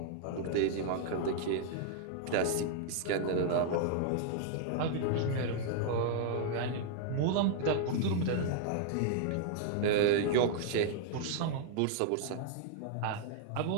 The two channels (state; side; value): different; both; correlation -0.01